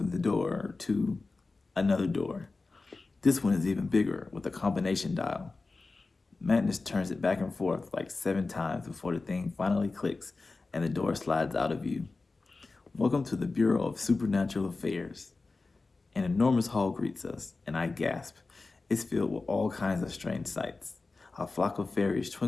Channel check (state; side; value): quieter; right; 3.7 dB